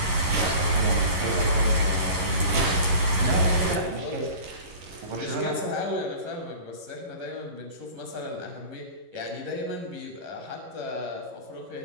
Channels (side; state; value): left; late; 11 ms